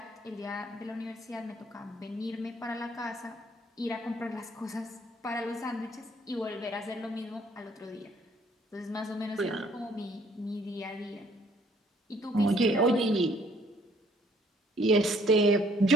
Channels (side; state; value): both; normal; correlation 0.62